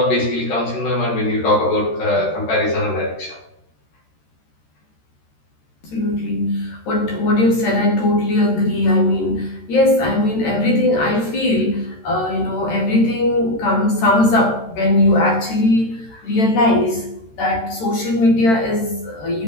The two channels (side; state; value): right; late; 13 ms